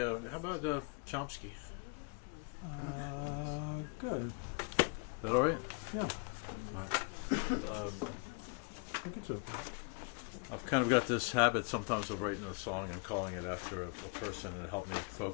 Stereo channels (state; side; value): quieter; right; 34.4 dB